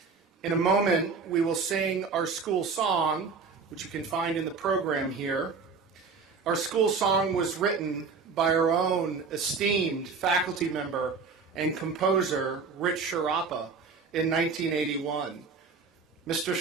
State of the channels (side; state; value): left; quieter; 5.0 dB